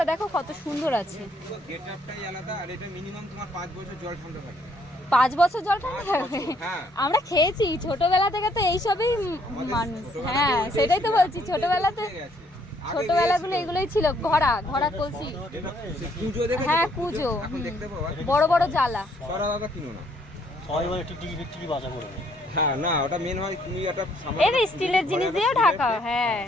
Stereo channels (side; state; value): both; normal; correlation 0.67